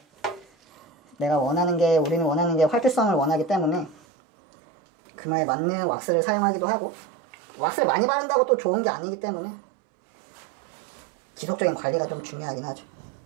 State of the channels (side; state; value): left; drops out; at 4.0 s